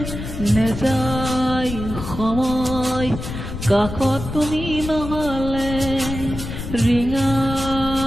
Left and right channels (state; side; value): noise; left; rumble, 8 dB below the sound